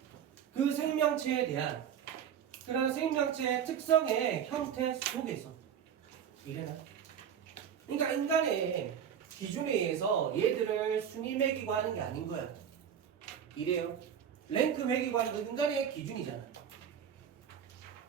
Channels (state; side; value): quieter; left; 8.6 dB